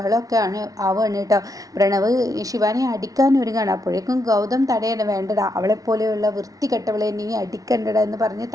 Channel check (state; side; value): late; left; 0.18 ms